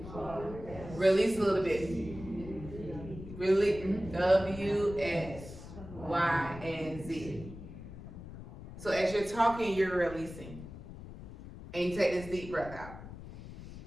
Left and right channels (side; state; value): left; noise; rumble, 13 dB below the sound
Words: Release a little bit. Release, W, X, Y, and Z. So as you're talking, you're releasing. And you take this deep breath out.